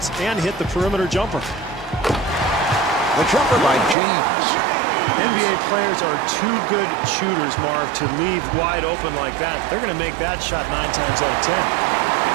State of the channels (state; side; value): drops out; left; at 4.0 s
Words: and hit the perimeter jumper. The jumper by James. NBA players are too good shooters, Marv, to leave wide open like that. They're going to make that shot 9 times out of 10.